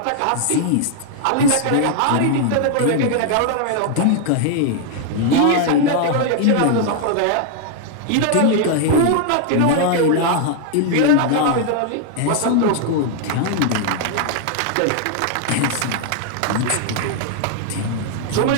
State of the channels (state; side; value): different; both; correlation 0.00